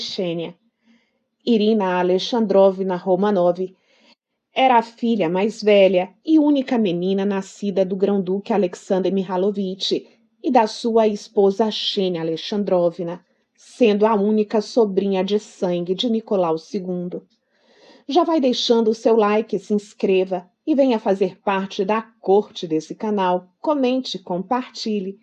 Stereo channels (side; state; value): both; identical; correlation 1.00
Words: Xênia. Irina Alexandrovna Romanov era a filha mais velha e única menina nascida do grão-duque Alexander Mihalovich e da sua esposa Xenia Alexandrovna, sendo a única sobrinha de sangue de Nicolau II. Já vai deixando o seu like, se inscreva e venha fazer parte da corte desse canal. Comente, compartilhe.